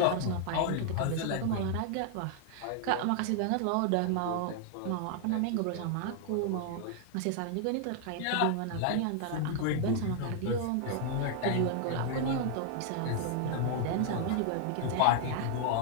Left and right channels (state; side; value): different; both; correlation 0.00